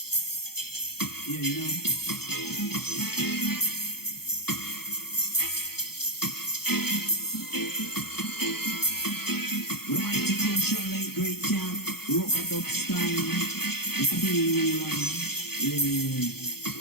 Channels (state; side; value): late; right; 0.96 ms